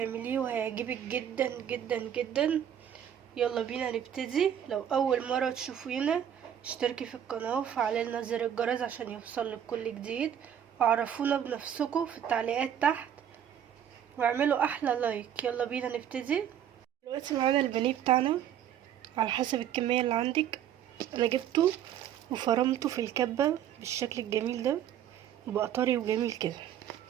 وهيعجبك جدا جدا جدا. يلا بينا نبتدي. لو اول مرة تشوفينا اشتركي في القناة وفعلي لنا زر الجرس عشان يوصلك كل جديد، وعرفونا بنفسكم في التعليقات تحت، واعملوا احلى لايك. يلا بينا نبتدي. دلوقتي معانا البانيه بتاعنا على حسب الكمية اللي عندك. انا جبته وفرمته في الكبة بالشكل الجميل ده، وبقى طري وجميل كده.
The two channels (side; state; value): left; quieter; 9.7 dB